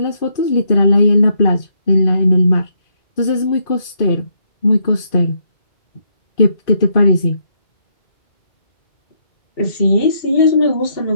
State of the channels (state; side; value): late; right; 2.5 ms